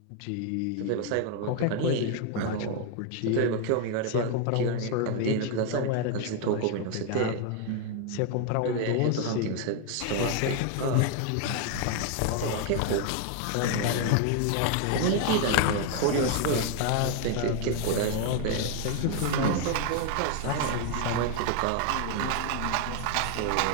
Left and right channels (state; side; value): different; both; correlation 0.00